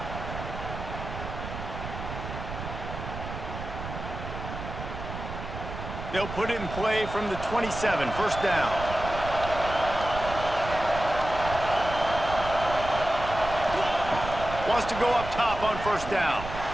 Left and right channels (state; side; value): noise; right; rumble, 8 dB below the sound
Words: They'll put it in play from the 27, first down. Wants to go up top on first down.